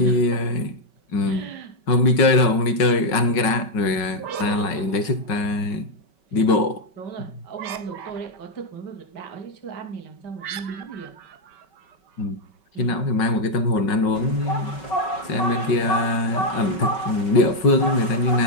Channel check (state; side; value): late; right; 5.5 ms